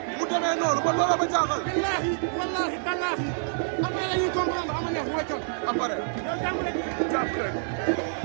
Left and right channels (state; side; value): silent; left; 60 dB below the other